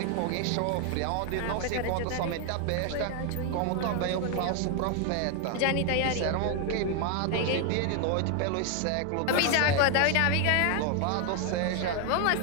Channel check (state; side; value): different; both; correlation 0.01